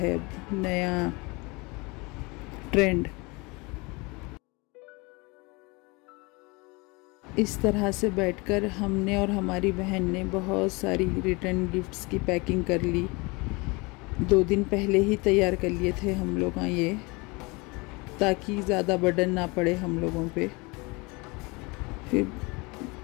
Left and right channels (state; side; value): quieter; right; 26.5 dB